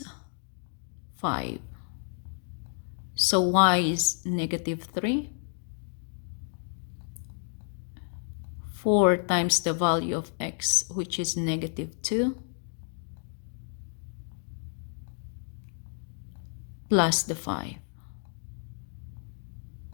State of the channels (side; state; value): right; silent; 57 dB below the other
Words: 5. So y is negative 3. 4 times the value of x, which is negative 2, plus the 5.